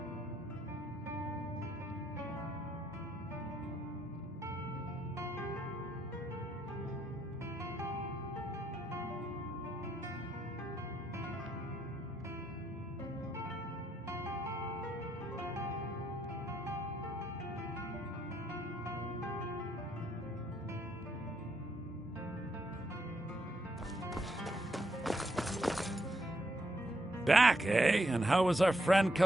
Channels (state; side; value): normal; both; correlation 0.77